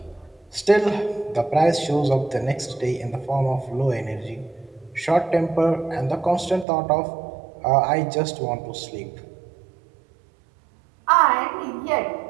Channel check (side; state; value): left; drops out; at 6.7 s